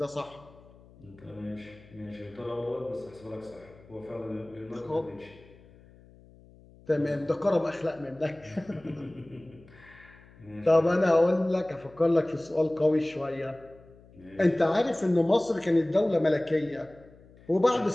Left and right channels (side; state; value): left; noise; hum, 24 dB below the sound